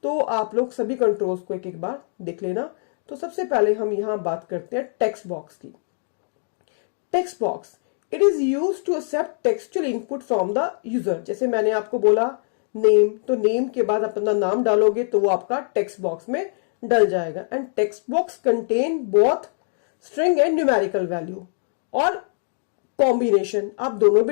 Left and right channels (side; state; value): right; silent; digital silence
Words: तो आप लोग सभी कंट्रोल्स को एक एक बार देख लेना। तो सबसे पहले हम यहाँ बात करते हैं टेक्स्ट बॉक्स की। Text box, it is use to accept textual input from the user. जैसे मैंने आपको बोला नेम, तो नेम के बाद अपना नाम डालोगे तो वो आपका टेक्स्ट बॉक्स में डल जाएगा। And text box contain both string and numerical value, और कॉम्बिनेशन, आप दोनों